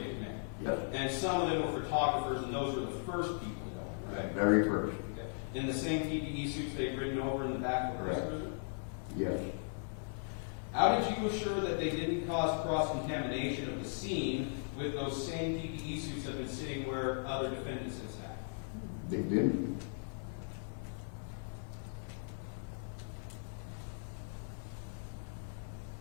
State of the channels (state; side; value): silent; right; 53 dB below the other